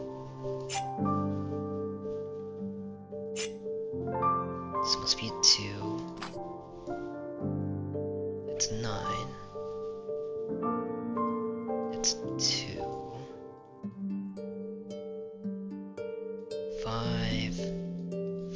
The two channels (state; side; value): identical; both; correlation 1.00